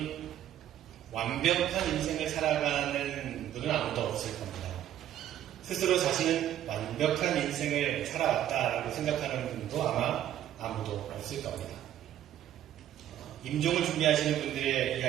완벽한 인생을 살아가는 분은 아무도 없을 겁니다. 스스로 자신은 완벽한 인생을 살아왔다라고 생각하는 분도 아마 아무도 없을 겁니다. 임종을 준비하시는 분들의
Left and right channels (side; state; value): left; quieter; 11.5 dB